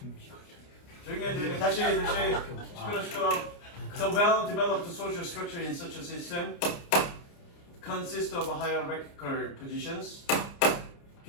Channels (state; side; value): late; right; 29 ms